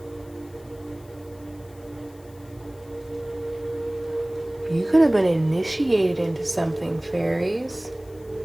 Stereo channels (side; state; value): left; noise; hiss, 27 dB below the sound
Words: you could have been initiated into something, fairies.